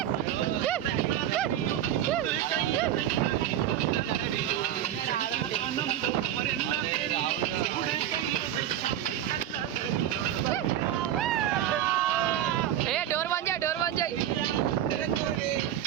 డోర్ బంద్ చేయి, డోర్ బంద్ చేయి.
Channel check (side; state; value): left; quieter; 11.3 dB